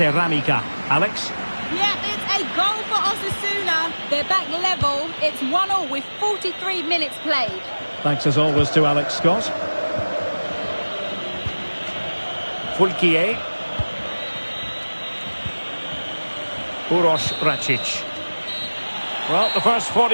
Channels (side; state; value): both; inverted; correlation -1.00